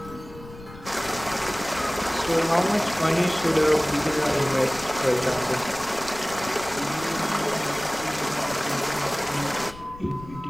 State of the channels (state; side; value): noise; left; rumble, 17 dB below the sound